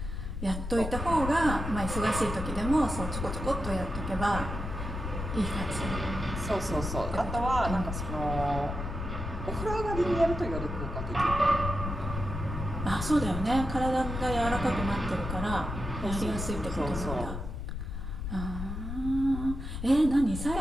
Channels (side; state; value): left; noise; rumble, 5 dB below the sound